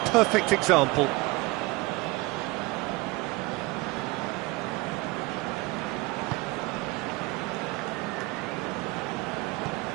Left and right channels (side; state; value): left; quieter; 22.5 dB